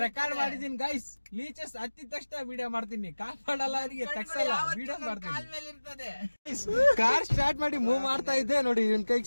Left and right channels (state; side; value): inverted; both; correlation -1.00